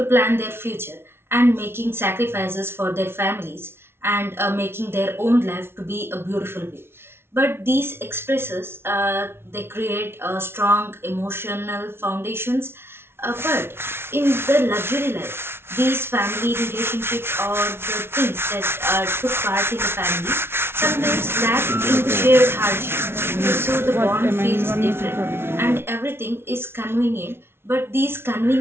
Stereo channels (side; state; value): left; late; 0.12 ms